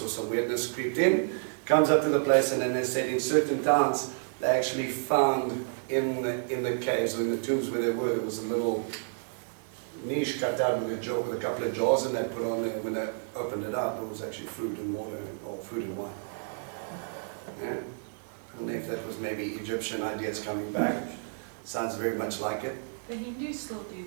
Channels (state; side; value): silent; left; digital silence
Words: or some weirdness creeped in, comes up to the place, and then they said in certain towns they actually found in the caves or in the tombs where they were, there was a little niche cut out with a couple of jars, and they put on there. When they opened it up, it was actually food and water, or food and wine. Yeah. I don't know if that was maybe Egyptian ideas coming back. Sounds very much like it. The Hindus still do